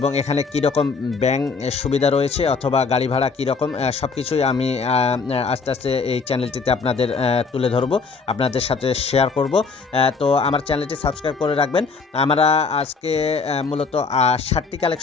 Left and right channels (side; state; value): right; quieter; 4.8 dB